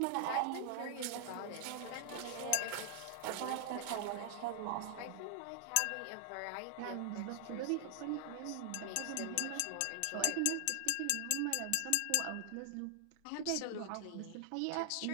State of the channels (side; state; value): both; different; correlation 0.00